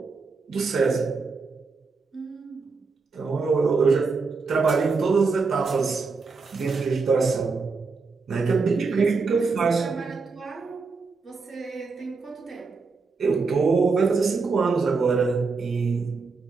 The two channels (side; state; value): left; quieter; 4.5 dB